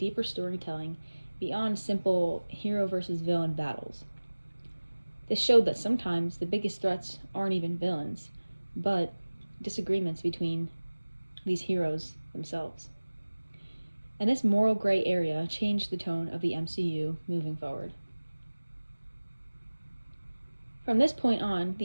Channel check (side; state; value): both; inverted; correlation -1.00